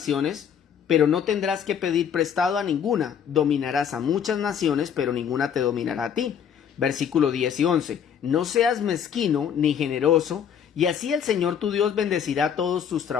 pero no tendrás que pedir prestado a ninguna. Dominarás a muchas naciones, pero ninguna te dominará a ti. Versículo 10 y 11. No seas mezquino ni generoso, y así el Señor tu Dios bendecirá todos tus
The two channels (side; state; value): right; quieter; 8.2 dB